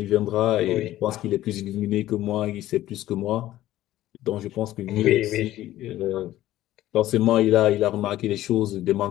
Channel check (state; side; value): quieter; right; 14.5 dB